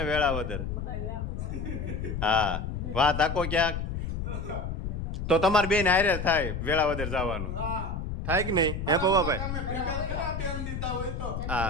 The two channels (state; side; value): noise; left; rumble, 4 dB below the sound